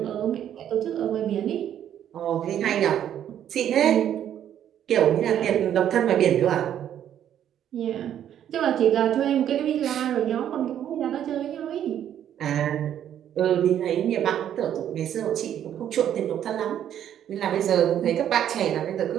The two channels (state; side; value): quieter; left; 10.3 dB